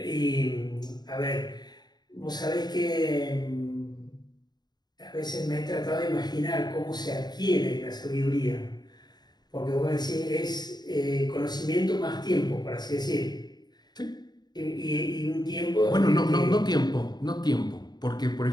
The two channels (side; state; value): right; late; 0.20 ms